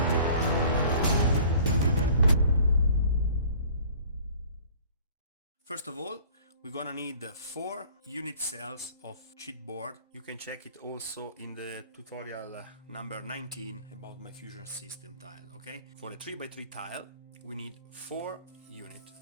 First of all, we're gonna need 4 unit cells of chipboard. You can check it also in the tutorial number 19 about my fusion system tile, okay? For a 3x3 tile, we need 4 units.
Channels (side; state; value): both; inverted; correlation -0.50